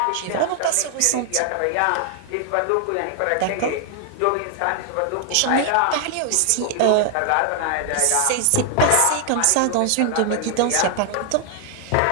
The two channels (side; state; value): both; different; correlation 0.00